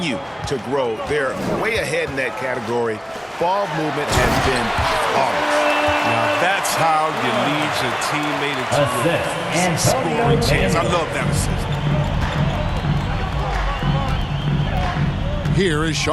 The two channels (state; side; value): identical; both; correlation 1.00